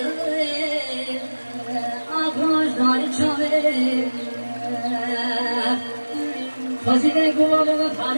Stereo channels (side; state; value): both; inverted; correlation -1.00